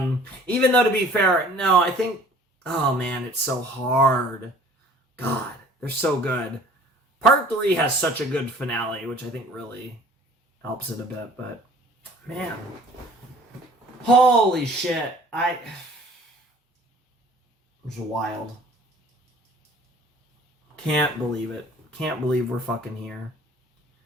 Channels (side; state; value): both; normal; correlation 0.51